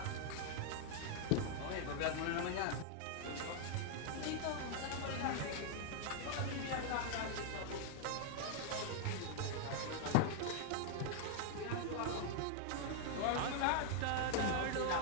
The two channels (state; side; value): different; both; correlation -0.01